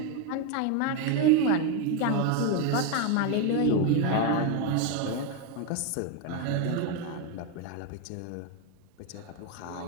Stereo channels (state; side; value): different; both; correlation 0.02